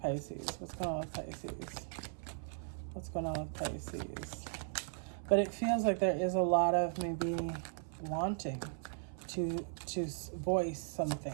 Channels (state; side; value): silent; left; 53 dB below the other